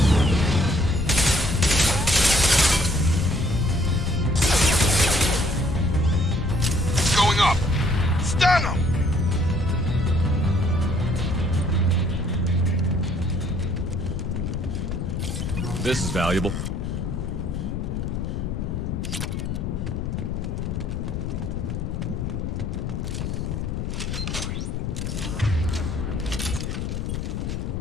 Going up. Stun him. This is valuable.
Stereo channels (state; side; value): noise; left; rumble, 3 dB below the sound